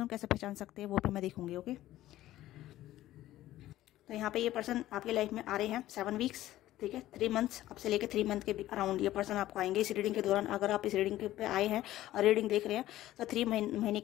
को कैसे पहचान सकते हैं वो भी मैं देखूंगी, ओके। तो यहाँ पे ये पर्सन आपकी लाइफ में आ रहे हैं 7 वीक्स, ठीक है। 3 मंथ्स, अब से लेके 3 मंथ के अराउंड ये पर्सन आपको आएंगे इस रीडिंग के दौरान। अगर आप इस रीडिंग पे आए हैं और रीडिंग देख रहे हैं तो 3 महीने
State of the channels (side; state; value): right; quieter; 14.6 dB